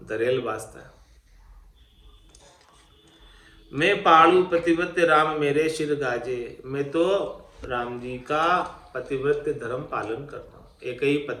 धरेल बाजता है। मैं पालू पतिव्रत राम, मेरे शिर गाजे। मैं तो राम जी का पतिव्रत धर्म पालन करता हूँ। एक ही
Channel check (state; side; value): identical; both; correlation 1.00